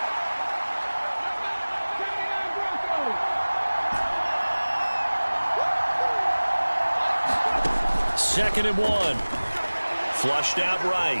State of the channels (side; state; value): both; inverted; correlation -1.00